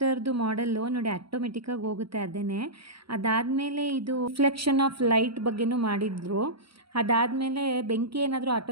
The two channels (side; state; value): left; late; 0.75 ms